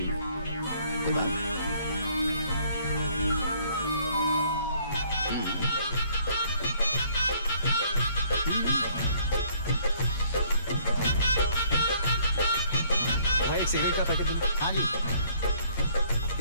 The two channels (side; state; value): both; inverted; correlation -0.61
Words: में, कोई बात? सिगरेट का पैकेट दो। हाँ जी।